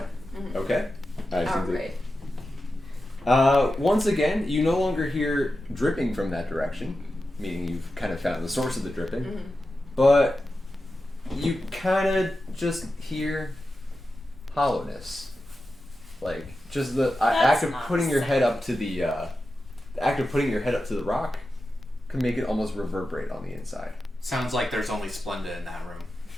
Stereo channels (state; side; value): normal; both; correlation 0.91